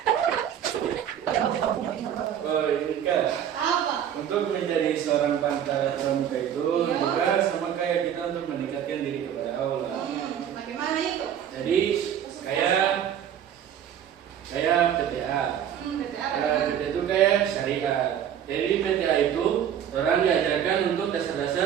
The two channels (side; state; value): left; quieter; 9.5 dB